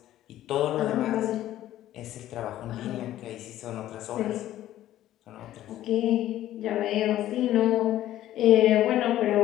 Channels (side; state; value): right; quieter; 13.4 dB